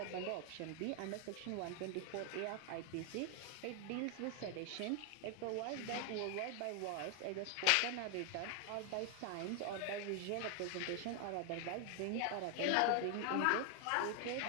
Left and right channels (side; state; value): both; different; correlation 0.00